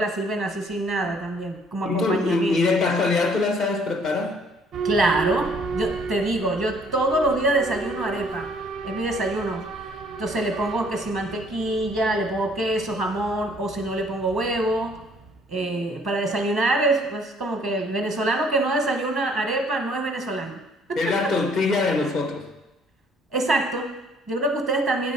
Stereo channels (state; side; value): normal; both; correlation 0.61